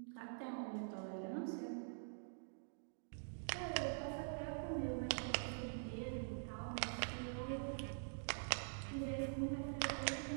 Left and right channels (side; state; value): left; silent; digital silence